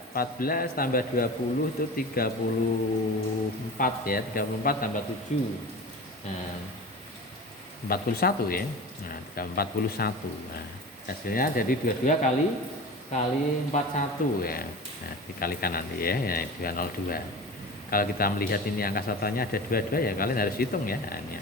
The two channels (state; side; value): normal; both; correlation 0.33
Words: 14 tambah 20 itu 34 ya, 34 tambah 7. Nah, 41 ya. Nah, 41. Nah, hasilnya jadi 22 kali 41 ya. Nah, dikalikan nanti ya, 202. Kalau kita melihat ini angka satuannya ada 22 ya kalian harus hitung ya. Ini